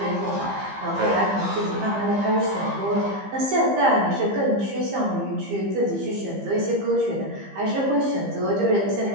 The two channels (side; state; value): left; late; 15 ms